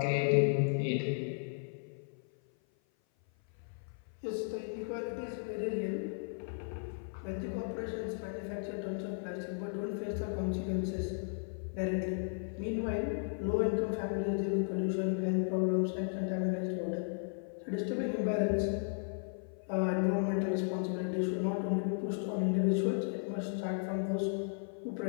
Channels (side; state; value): right; silent; 54 dB below the other